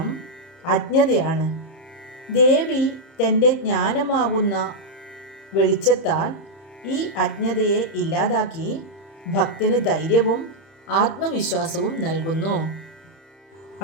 അജ്ഞതയാണ്. ദേവി തൻ്റെ ജ്ഞാനമാകുന്ന വെളിച്ചത്താൽ ഈ അജ്ഞതയെ ഇല്ലാതാക്കി ഭക്തന് ധൈര്യവും ആത്മവിശ്വാസവും നൽകുന്നു.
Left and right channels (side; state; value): right; late; 30 ms